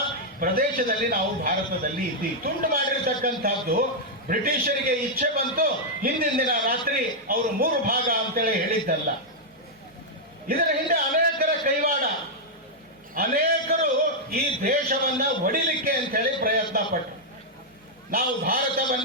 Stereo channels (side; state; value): both; normal; correlation -0.04